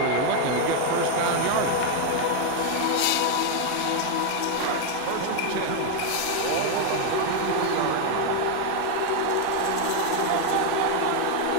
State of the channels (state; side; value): different; both; correlation 0.01